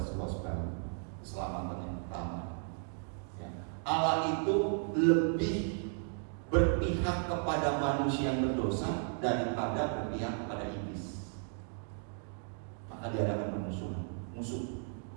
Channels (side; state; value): left; silent; 55 dB below the other